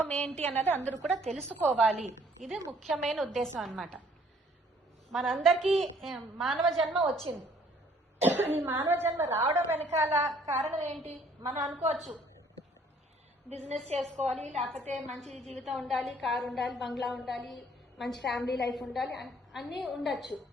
ఏంటి అన్నది అందరూ కూడా తెలుసుకోవాలి. ఇది ముఖ్యమైన ఉద్దేశం అన్నమాట. మనందరికీ మానవ జన్మ వచ్చింది. ఈ మానవ జన్మ రావడం వెనకాల కారణం ఏంటి? మనం అనుకోవచ్చు, బిజినెస్ చేసుకోవాలి, లేకపోతే మంచి జీవితం ఉండాలి, కారు ఉండాలి, బంగ్లా ఉండాలి, మంచి ఫ్యామిలీ లైఫ్ ఉండాలి, అన్నీ ఉండొచ్చు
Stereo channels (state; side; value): normal; both; correlation 0.60